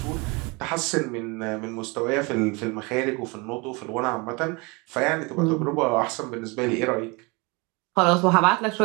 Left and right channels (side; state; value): left; quieter; 27.8 dB